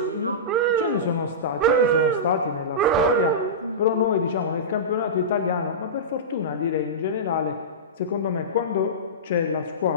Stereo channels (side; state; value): both; normal; correlation -0.18